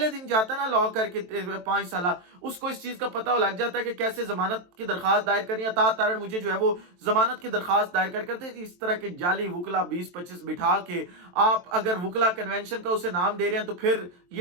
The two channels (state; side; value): late; left; 23 ms